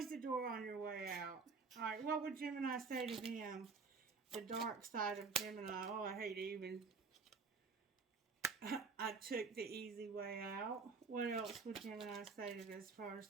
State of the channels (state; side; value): quieter; left; 4.8 dB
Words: the door on your way out. All right, what would Gemini say to them? The dark side of Gemini. Oh, I hate even. I took the easy way out. What else would Gemini say to this